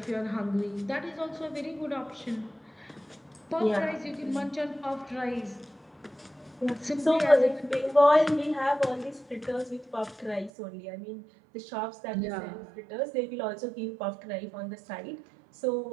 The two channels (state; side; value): drops out; left; at 10.5 s